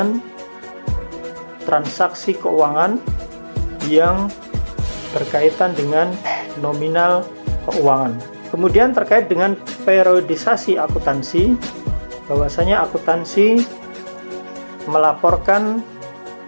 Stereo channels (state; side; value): inverted; both; correlation -1.00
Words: transaksi keuangan yang berkaitan dengan nominal keuangan. Kemudian terkait dengan periodisasi akuntansi, bahwasanya akuntansi melaporkan